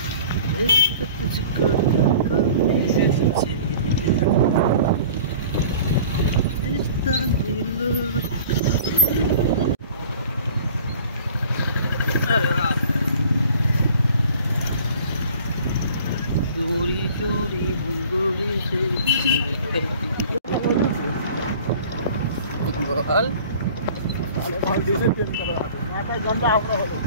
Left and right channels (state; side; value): inverted; both; correlation -0.46